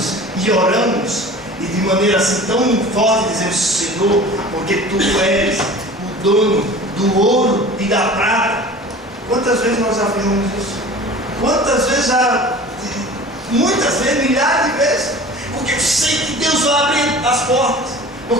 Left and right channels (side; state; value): both; normal; correlation 0.41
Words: e oramos, e de maneira assim tão forte dizemos: Senhor, porque Tu és o dono do ouro e da prata. Quantas vezes nós afirmamos isso? Quantas vezes muitas vezes, milhares de vezes, porque eu sei que Deus vai abrir as portas,